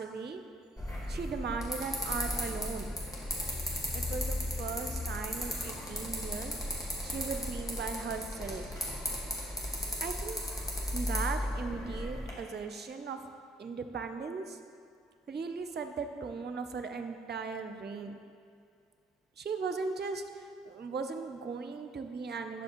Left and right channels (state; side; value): normal; both; correlation 0.63